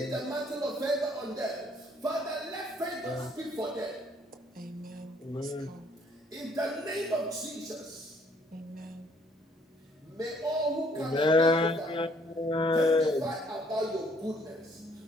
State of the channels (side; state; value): both; normal; correlation 0.63